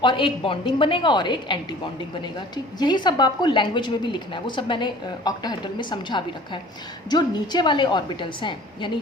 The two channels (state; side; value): normal; both; correlation 0.47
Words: और एक बॉन्डिंग बनेगा और एक एंटी बॉन्डिंग बनेगा। ठीक, यही सब आपको लैंग्वेज में भी लिखना है, वो सब मैंने ऑक्टाहेड्रल में समझा भी रखा है। जो नीचे वाले ऑर्बिटल्स हैं, यानी